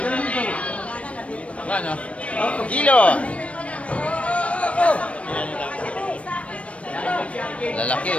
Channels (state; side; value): late; right; 0.063 ms